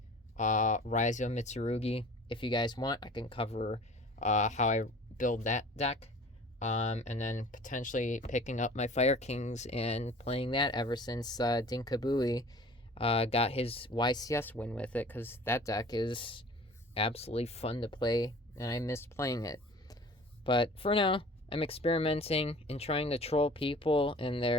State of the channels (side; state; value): both; normal; correlation 0.45